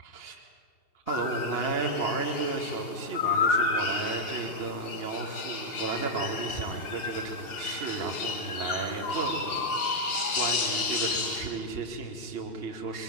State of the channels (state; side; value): late; right; 2.8 ms